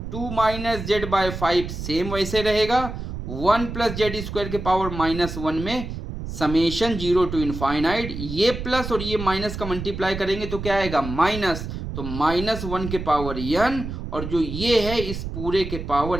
2 minus z by 5 same वैसे रहेगा 1 प्लस जेड स्क्वायर के पावर -1 में समेशन 0 to इनफाइनाइट ये प्लस और ये माइनस का मल्टीप्लाई करेंगे तो क्या आएगा माइनस तो -1 के पावर n और जो ये है इस पूरे के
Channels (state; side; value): noise; right; rumble, 7 dB below the sound